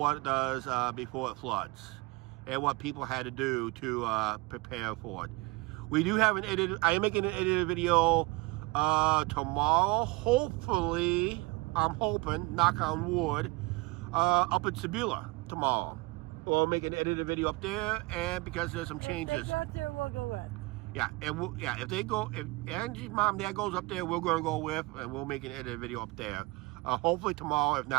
it does before it floods and what people had to do to prepare for it. We do have an edited. I am making an edited video tomorrow. Hopefully, I'm hoping, knock on wood, up in Sebula tomorrow. We'll make an edited video up there, and because there's some changes. If they go up there, we'll go with. Yeah, and if Angie's mom and dad goes up there, we're going to go with, and we'll make an edited video up there. Hopefully tomorrow. If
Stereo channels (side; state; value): left; quieter; 24.8 dB